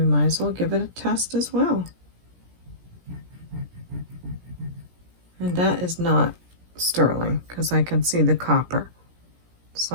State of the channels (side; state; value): left; late; 17 ms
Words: might as well give it a test as well. And that is not sterling because I can see the copper.